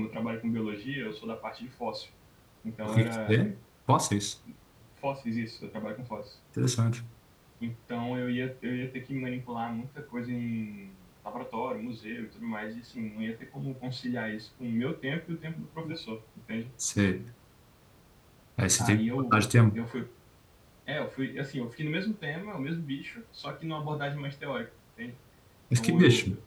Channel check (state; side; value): identical; both; correlation 1.00